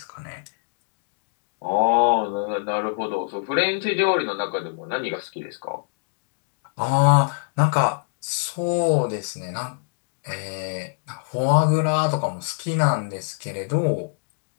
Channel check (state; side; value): silent; right; digital silence